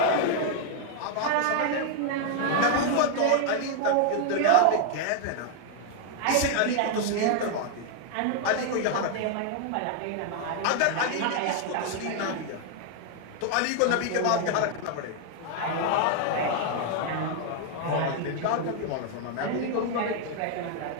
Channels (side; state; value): both; different; correlation 0.00